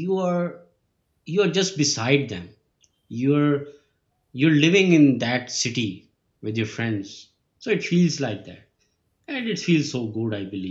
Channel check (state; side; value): identical; both; correlation 1.00